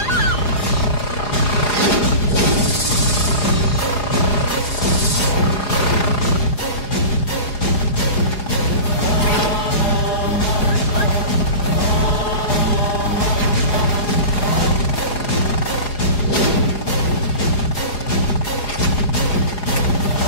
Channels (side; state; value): right; late; 4.8 ms